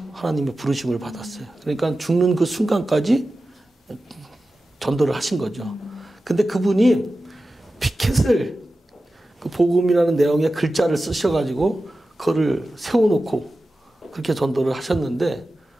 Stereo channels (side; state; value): both; normal; correlation 0.94